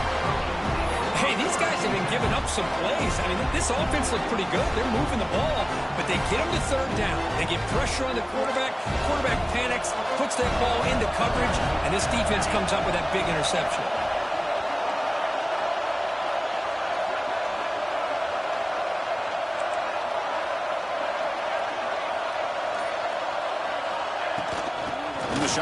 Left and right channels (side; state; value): both; identical; correlation 1.00